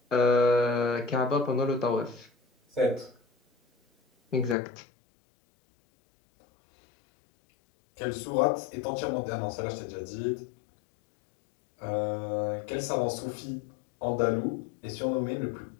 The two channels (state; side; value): drops out; right; at 4.5 s